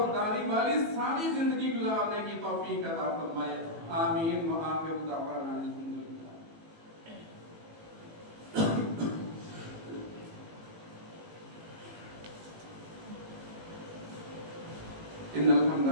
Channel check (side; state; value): left; late; 18 ms